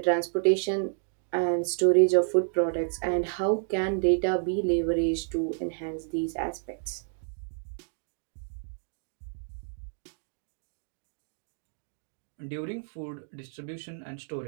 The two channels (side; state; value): left; silent; 58 dB below the other